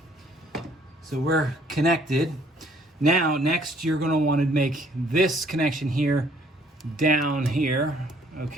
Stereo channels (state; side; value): normal; both; correlation 0.61